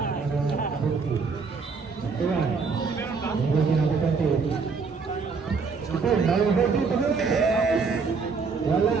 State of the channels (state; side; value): quieter; left; 5.0 dB